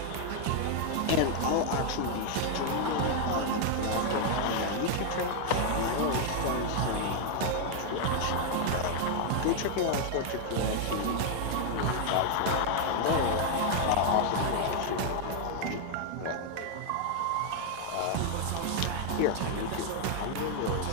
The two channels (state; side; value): different; both; correlation 0.00